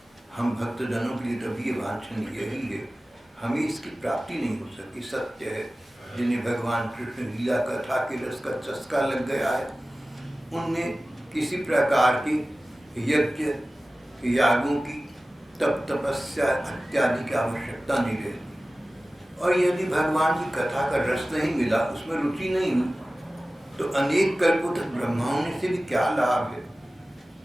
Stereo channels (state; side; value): normal; both; correlation 0.97